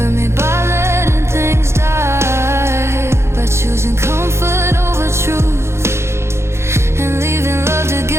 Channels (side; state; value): left; late; 0.13 ms